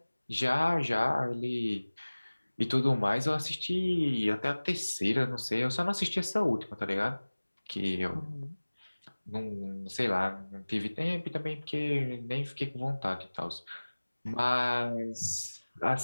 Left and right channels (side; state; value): both; inverted; correlation -1.00